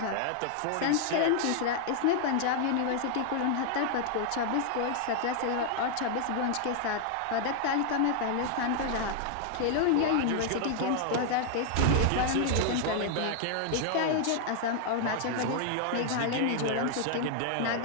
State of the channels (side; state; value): both; different; correlation 0.00